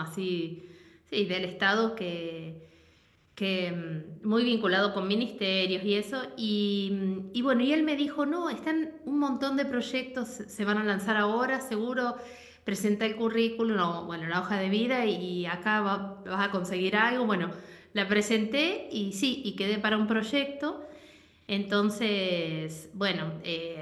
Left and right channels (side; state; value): both; identical; correlation 1.00